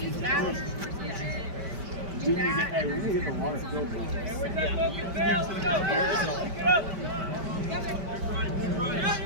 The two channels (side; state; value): left; late; 5.1 ms